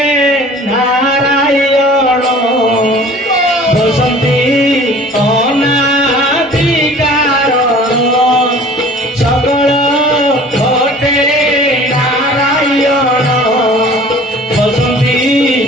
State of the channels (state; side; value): normal; both; correlation 0.46